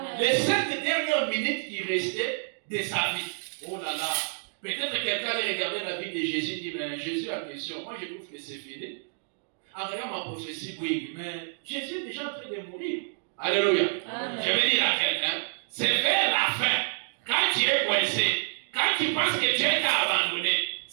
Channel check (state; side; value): silent; left; digital silence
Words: les 7 dernières minutes qui restaient de sa vie. Oh là là, peut-être quelqu'un allait regarder la vie de Jésus et dit, mais Jésus a question, moi je trouve que c'est fini. En regardant ma prophétie, oui, mais Jésus est déjà en train de mourir. Alléluia. Je vais dire à quelqu'un, c'est vers la fin, quand tu es coincé, quand tu penses que Dieu t'a abandonné,